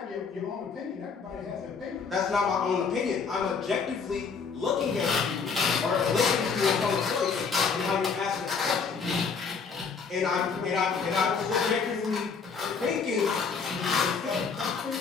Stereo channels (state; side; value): quieter; right; 5.5 dB